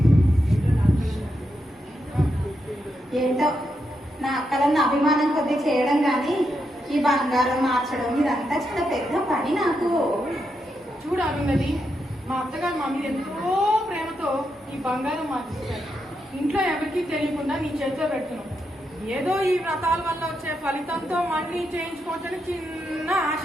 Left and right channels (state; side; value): normal; both; correlation 0.83